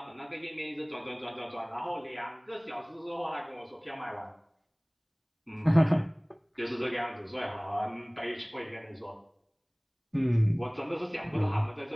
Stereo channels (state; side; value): identical; both; correlation 1.00